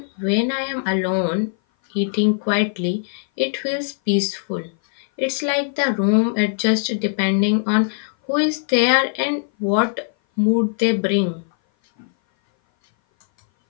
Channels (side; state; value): right; silent; 58 dB below the other